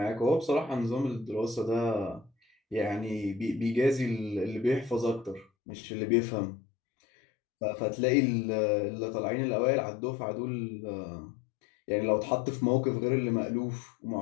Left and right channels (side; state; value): right; drops out; at 5.5 s